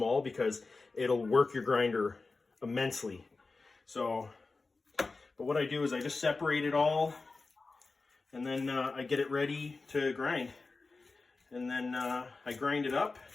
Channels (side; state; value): right; quieter; 3.8 dB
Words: because it'll work your grinder immensely. So, but what I do is I just separate it all, and then I get it ready to grind. And then I grind it up